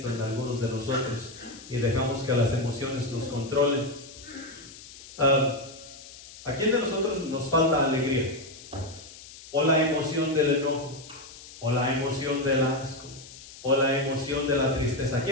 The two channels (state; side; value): noise; left; hiss, 17 dB below the sound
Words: en algunos de nosotros y dejamos que las emociones nos controlen. ¿A quién de nosotros nos falta alegría? O la emoción del enojo, o la emoción del asco, o la emoción de la tristeza. ¿A